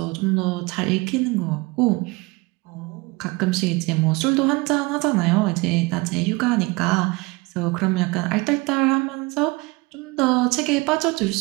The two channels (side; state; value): left; quieter; 24.5 dB